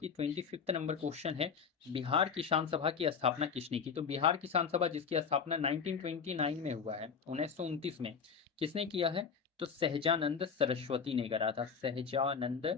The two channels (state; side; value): quieter; right; 6.2 dB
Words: 25th नंबर क्वेश्चन है, बिहार किसान सभा की स्थापना किसने की? तो बिहार किसान सभा जिसकी स्थापना 1929 में हुआ है, 1929 में, किसने किया है? तो सहजानंद सरस्वती ने करा था। सहजानंद